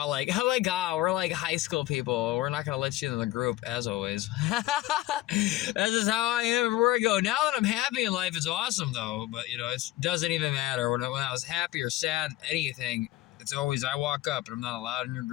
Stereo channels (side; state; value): right; quieter; 16.2 dB